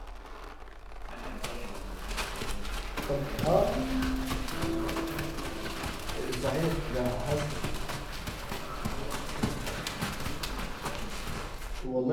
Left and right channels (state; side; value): identical; both; correlation 1.00